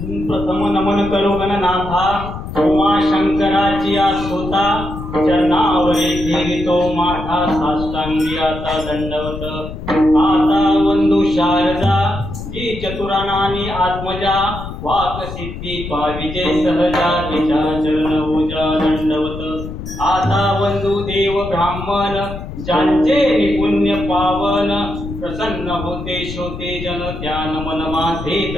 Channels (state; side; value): noise; left; rumble, 9 dB below the sound